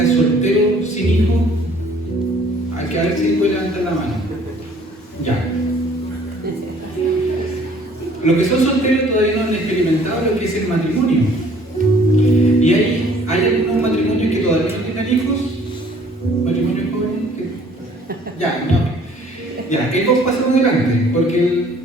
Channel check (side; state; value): both; normal; correlation 0.56